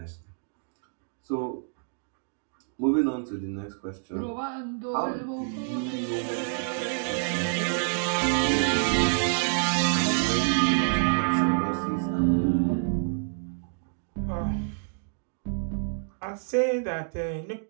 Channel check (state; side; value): silent; left; digital silence